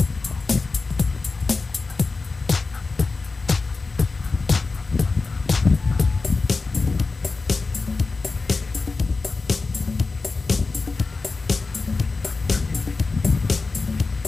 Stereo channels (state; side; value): quieter; right; 4.0 dB